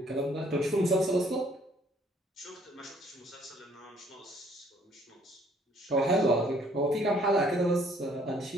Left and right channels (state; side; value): normal; both; correlation 0.62